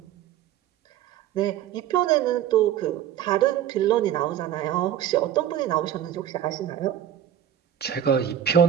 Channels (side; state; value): left; quieter; 10.6 dB